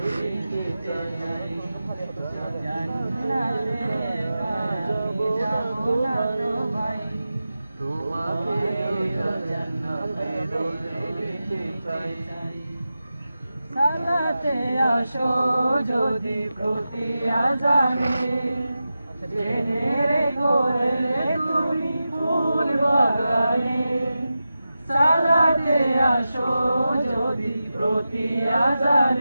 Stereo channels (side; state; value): both; inverted; correlation -0.93